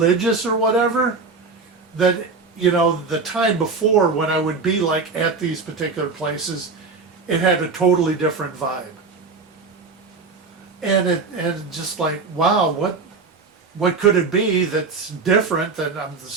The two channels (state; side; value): quieter; left; 4.5 dB